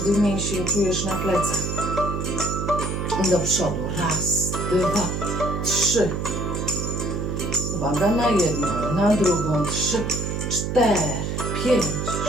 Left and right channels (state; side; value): noise; right; hum, 2 dB below the sound